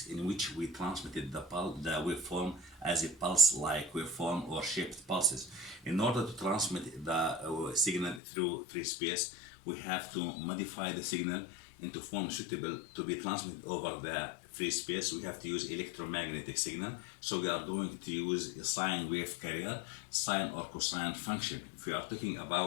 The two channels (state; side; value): drops out; right; at 8.2 s